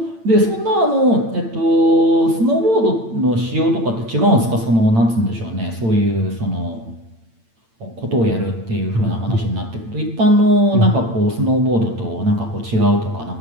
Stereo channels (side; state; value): left; late; 8.9 ms